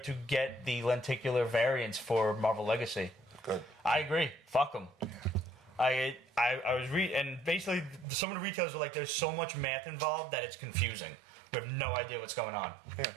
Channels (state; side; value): drops out; left; at 8.1 s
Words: get the lenticular variants for Marvel Legacy. Good. I agree. Fuck them. I was and basically some of the retailers are like, there's so much math involved that it's confusing. We have no idea what's going on.